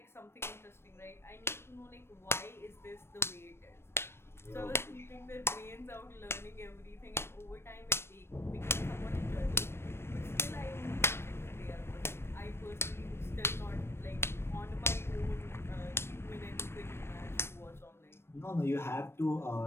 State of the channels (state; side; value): late; right; 0.12 ms